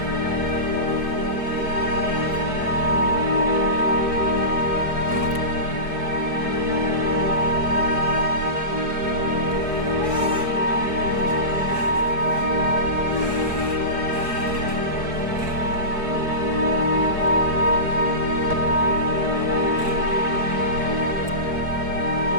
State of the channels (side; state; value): left; late; 4.7 ms